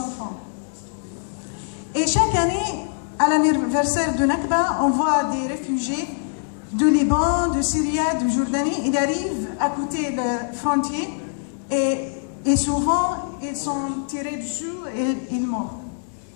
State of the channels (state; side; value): silent; right; 63 dB below the other